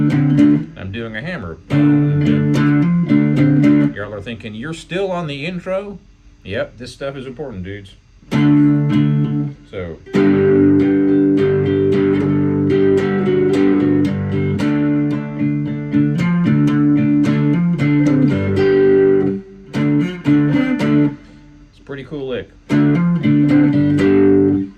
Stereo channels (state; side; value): identical; both; correlation 1.00